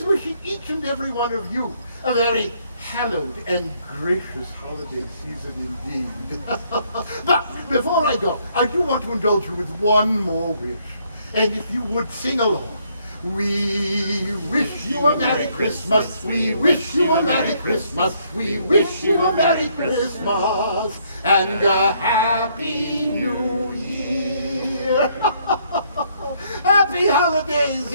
wishing each and every one of you a very hallowed and gracious holiday season indeed. But before I go, I do want to indulge you with one more wish. And if you would sing along. We wish you a Merry Christmas. We wish you a Merry Christmas. We wish you a Merry Christmas and a Happy New Year. Happy holidays,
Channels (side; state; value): both; inverted; correlation -0.69